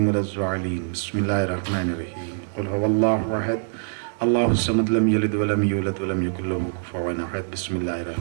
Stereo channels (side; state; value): left; silent; 63 dB below the other